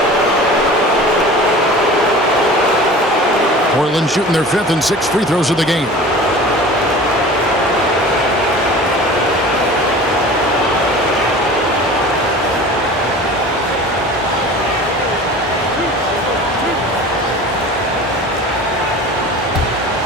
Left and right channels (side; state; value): both; normal; correlation 0.39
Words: Portland shooting their 5th and 6th free throws of the game.